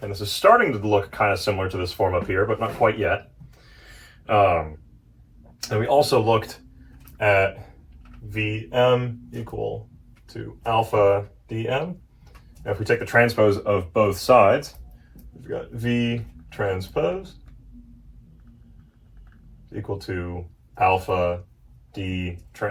and this is starting to look kind of similar to this form up here, but not quite yet. And we also looked at vm equal to alpha dm. Now if we take the transpose of both sides, we've got v transpose equal to alpha d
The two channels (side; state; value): both; identical; correlation 1.00